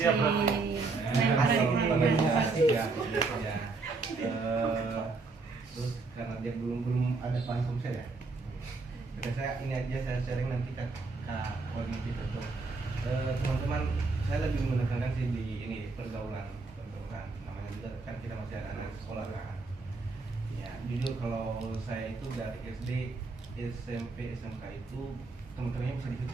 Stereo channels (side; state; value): left; quieter; 3.9 dB